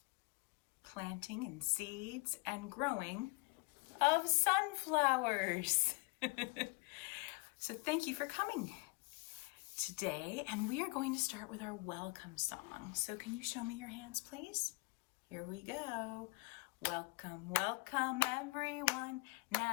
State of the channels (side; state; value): right; quieter; 28.7 dB